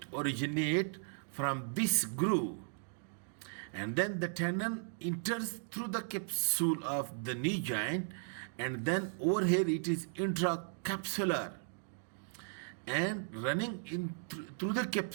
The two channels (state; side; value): silent; left; digital silence